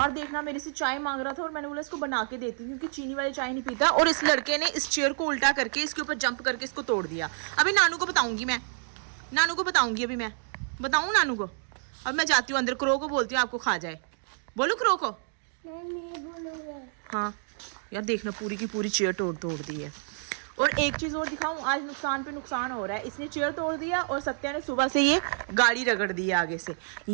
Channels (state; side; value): silent; left; 59 dB below the other